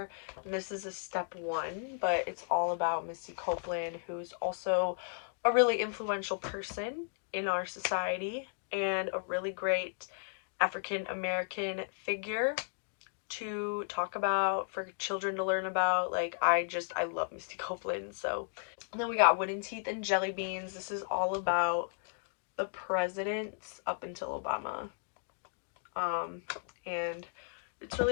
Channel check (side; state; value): right; silent; digital silence